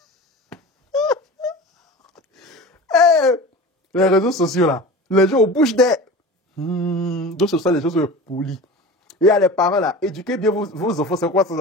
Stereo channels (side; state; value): both; normal; correlation 0.34